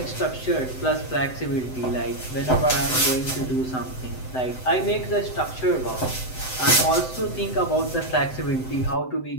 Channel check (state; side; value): late; right; 7.8 ms